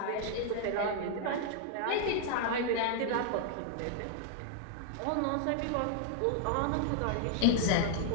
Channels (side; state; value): both; different; correlation 0.00